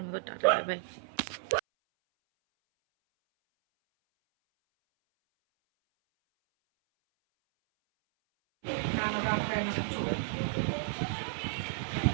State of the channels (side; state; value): left; silent; 56 dB below the other